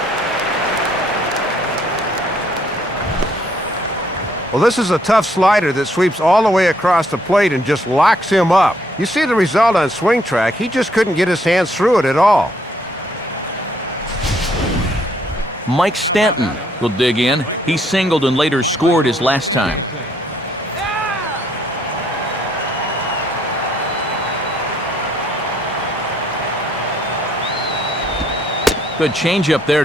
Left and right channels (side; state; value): both; normal; correlation 0.67